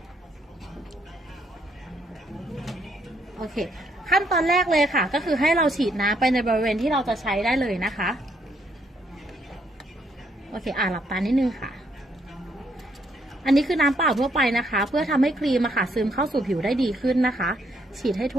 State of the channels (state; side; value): normal; both; correlation 0.71